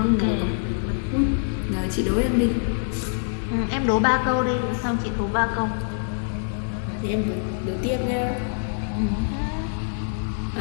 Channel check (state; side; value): silent; right; digital silence